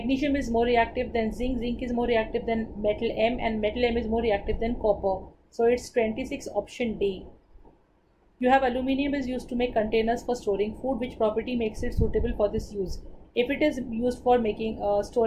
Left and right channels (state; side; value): identical; both; correlation 1.00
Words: is more reactive than zinc, zinc is more reactive than metal M, and metal M is more reactive than copper. So it's 26, option D. You have aluminium is used to make containers for storing food. Which property makes it suitable for this use? If it is used for making